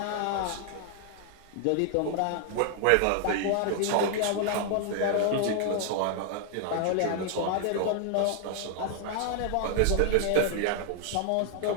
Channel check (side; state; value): both; different; correlation 0.00